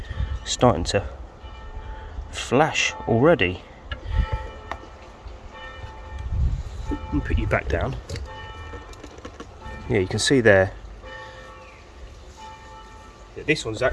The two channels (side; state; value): both; identical; correlation 1.00